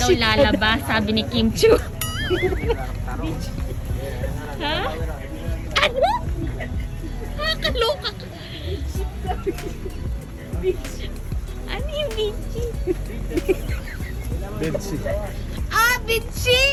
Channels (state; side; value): identical; both; correlation 1.00